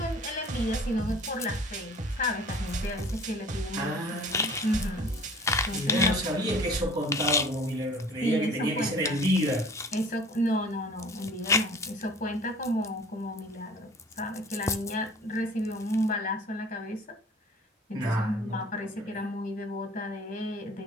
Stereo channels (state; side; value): normal; both; correlation 0.46